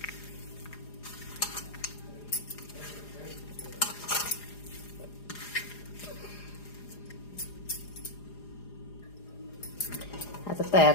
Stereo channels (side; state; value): right; late; 4.9 ms